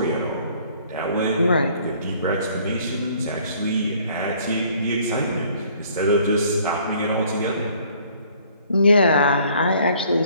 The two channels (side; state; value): both; inverted; correlation -0.59